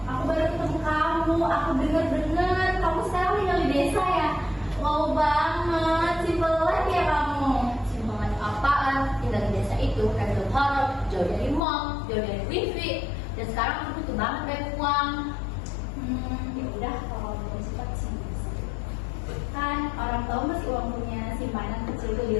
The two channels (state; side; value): drops out; right; at 11.6 s